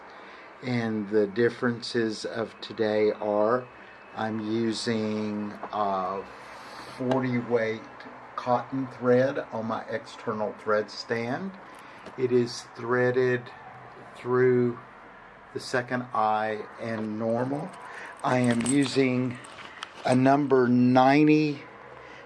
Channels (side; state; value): both; identical; correlation 1.00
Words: And the differences of today are I'm using 40 weight cotton thread on my external thread stand. It is threaded through the second eye and normal. I am using a number 90,